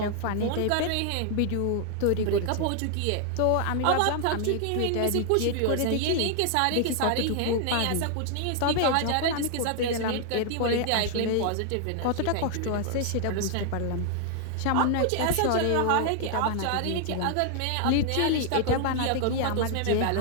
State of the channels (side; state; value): both; different; correlation 0.00